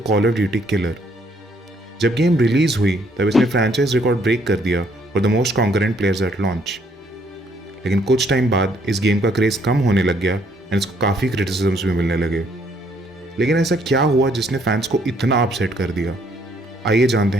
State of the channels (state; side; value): normal; both; correlation 0.67